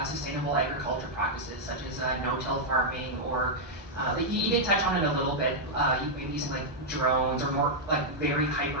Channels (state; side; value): normal; both; correlation -0.04